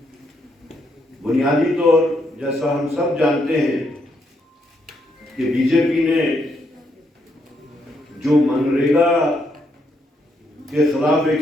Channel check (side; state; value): both; normal; correlation 0.77